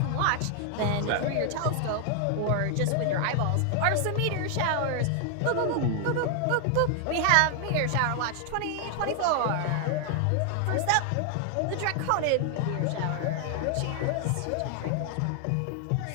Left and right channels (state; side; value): different; both; correlation 0.00